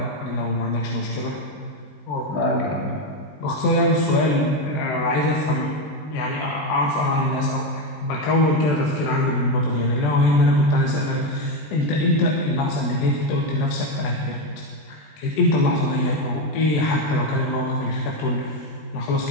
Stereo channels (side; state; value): right; late; 20 ms